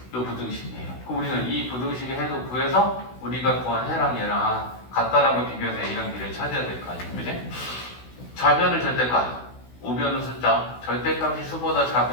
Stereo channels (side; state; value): right; late; 16 ms